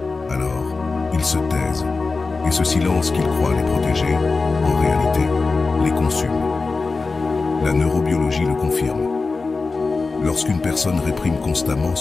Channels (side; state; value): right; quieter; 4.0 dB